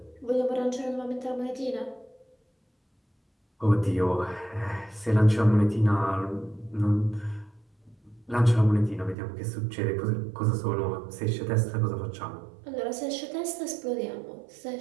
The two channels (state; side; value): drops out; left; at 9.2 s